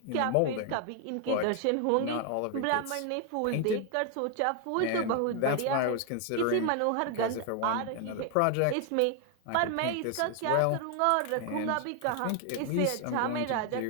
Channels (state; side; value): different; both; correlation 0.01